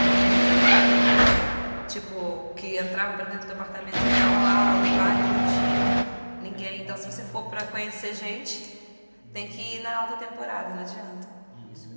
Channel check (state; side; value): inverted; both; correlation -1.00